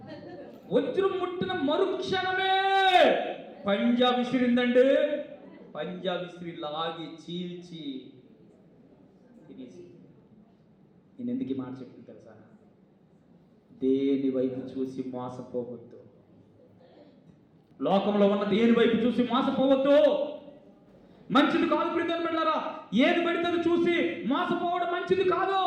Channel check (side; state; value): both; identical; correlation 1.00